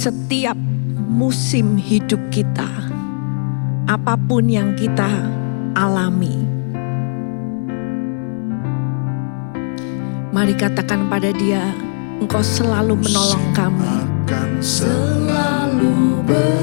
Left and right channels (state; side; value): silent; right; digital silence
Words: musim hidup kita. Apapun yang kita alami. Mari katakan pada Dia, Engkau selalu menolong kami. Selalu